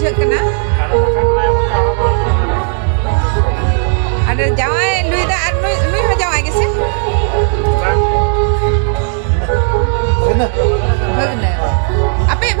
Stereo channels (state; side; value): silent; left; 64 dB below the other